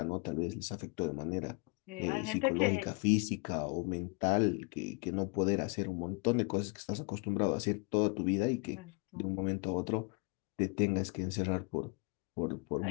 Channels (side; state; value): right; quieter; 31.6 dB